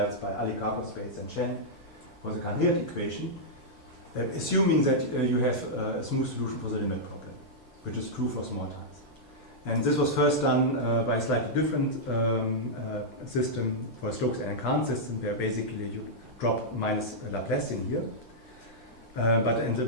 by Alikakos, and Chen for the Cahn-Hilliard equation, assuming that you have a smooth solution for the limit problem, which is true for small times. And this was first done by a slightly different system for a Stokes and Cahn system, where basically you drop minus Laplacian here. But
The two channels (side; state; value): both; normal; correlation -0.08